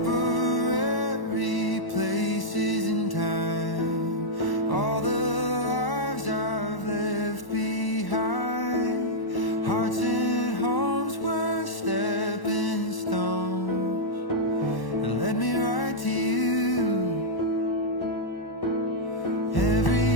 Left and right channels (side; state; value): right; late; 1.1 ms